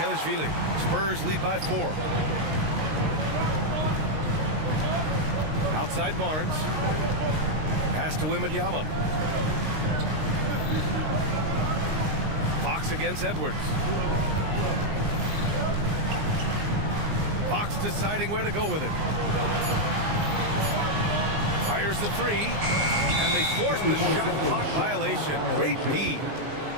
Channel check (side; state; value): left; late; 19 ms